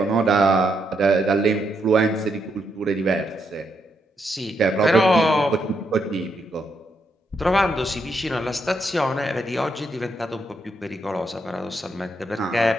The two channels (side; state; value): both; normal; correlation 0.79